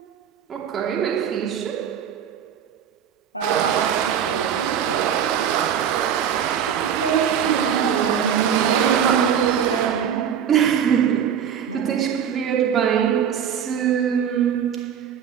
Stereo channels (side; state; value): left; quieter; 8.5 dB